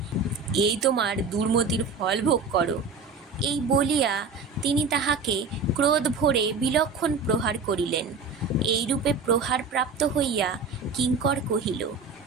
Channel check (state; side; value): quieter; left; 4.6 dB